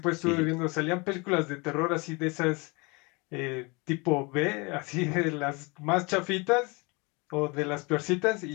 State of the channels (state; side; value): quieter; right; 28.0 dB